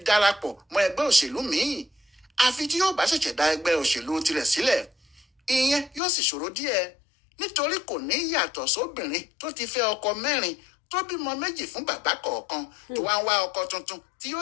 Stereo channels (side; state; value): right; drops out; at 6.0 s